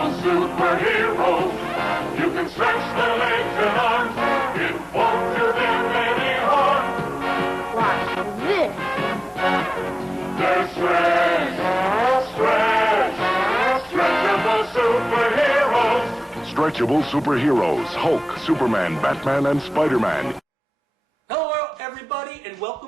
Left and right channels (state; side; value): normal; both; correlation 0.98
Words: superheroes. You can stretch their legs and arms. It won't do them any harm. Watch this. They're stretchable superheroes. Stretchable superheroes, Hulk, Superman, Batman, and Spider-Man. Hello everybody and